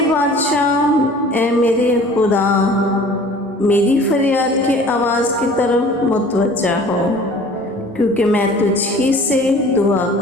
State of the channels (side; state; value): both; normal; correlation 0.47